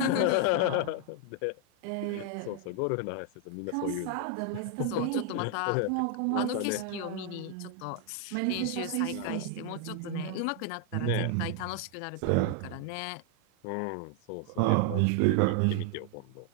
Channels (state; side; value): different; both; correlation 0.00